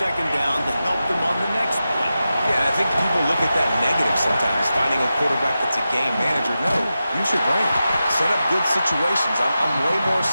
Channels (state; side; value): inverted; both; correlation -0.92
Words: down to help them on the next play. Yeah, and I think people look at that negative sometimes, finding a quarterback that's a game manager. No, use your brain. Set up good situations. I'm way more